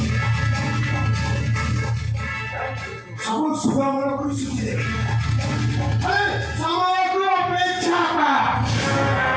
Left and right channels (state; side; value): identical; both; correlation 1.00